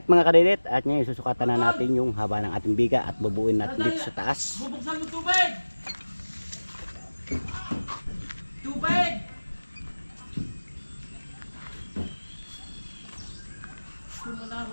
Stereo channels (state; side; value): inverted; both; correlation -1.00